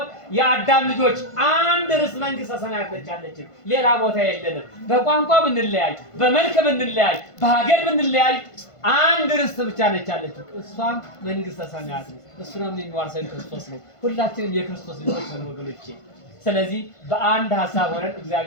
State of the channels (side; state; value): right; late; 1.5 ms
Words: የአዳም ልጆች አንድ ርስ መንግስተ ሰማያት ነች ያለችን፣ ሌላ ቦታ የለንም። በቋንቋ ብንለያይ፣ በመልክ ብንለያይ፣ በሀገር ብንለያይ አንድ ርስት ብቻ ነች ያለችው፣ እሷም መንግስተ ሰማያት ነው። እሱንም የሚዋርሰን ክርስቶስ ነው። ሁላችንም የክርስቶስ ልጆች ነን ወገኖቼ። ስለዚህ በአንድ ሀሳብ ሆነን